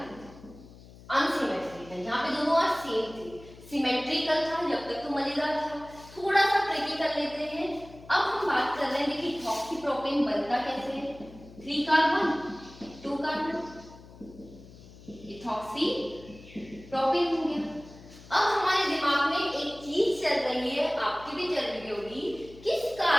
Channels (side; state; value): left; noise; hum, 20 dB below the sound